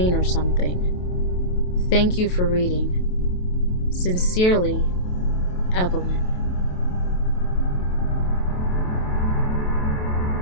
or something. Thank you for reading. Sincerely, Evelyn.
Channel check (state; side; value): late; right; 28 ms